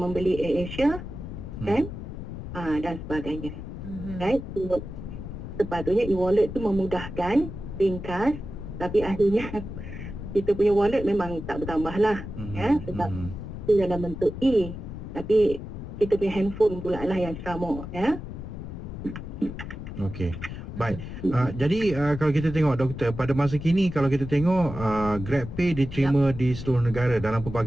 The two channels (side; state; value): left; noise; rumble, 9 dB below the sound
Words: AirAsia kan, dan sebagainya. Right? So, sepatutnya e-wallet tu memudahkan, ringkas, tapi akhirnya kita punya wallet memang tak bertambah lah ya, sebab itu dalam bentuk E, tapi kita punya handphone pula lah yang ceramuk ya. Okey. Baik. Jadi kalau kita tengok, doktor, pada masa kini kalau kita tengok GrabPay diterima di seluruh negara dalam